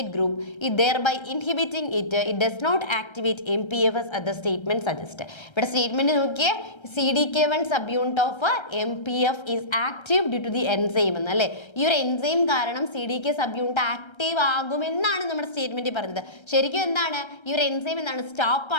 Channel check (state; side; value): late; right; 1.3 ms